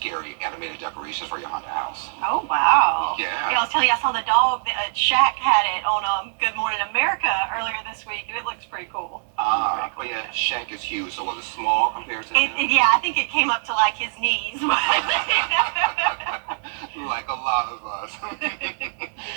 animated decorations for your haunted house. Oh, wow. Yeah. I was telling you, I saw the dog, Shaq had it on Good Morning America earlier this week, and it looks pretty cool. But yeah, Shaq is huge, so was it small compared to him? Yeah, I think it came up to like his knees. Like a lot of us.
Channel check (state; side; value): silent; left; 63 dB below the other